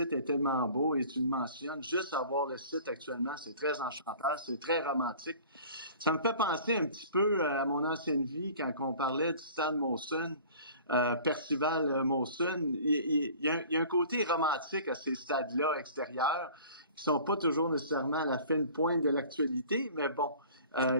est tellement beau et tu le mentionnes. Juste avoir le site actuellement, c'est très enchanteur, c'est très romantique. Ça me fait penser un petit peu à mon ancienne vie quand on parlait du stade Molson, Percival Molson. Il y a un côté romantique à ces stades-là extérieurs qui sont pas toujours nécessairement à la fine pointe de l'actualité, mais bon,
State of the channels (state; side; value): inverted; both; correlation -0.46